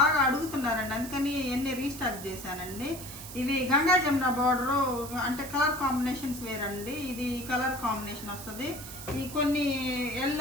అడుగుతున్నారండి, అందుకని ఎన్ని రీస్టాక్ చేశానండి. ఇవి గంగా జమున బార్డర్ అంటే కలర్ కాంబినేషన్స్ వేరండి. ఇది కలర్ కాంబినేషన్ వస్తుంది. ఈ కొన్ని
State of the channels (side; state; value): right; noise; hiss, 12 dB below the sound